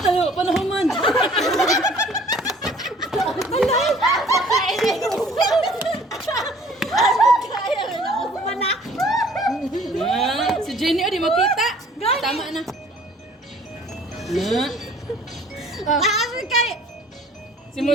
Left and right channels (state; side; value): normal; both; correlation 0.53